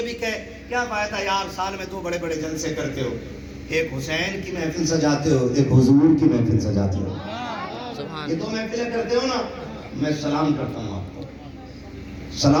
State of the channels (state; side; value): identical; both; correlation 1.00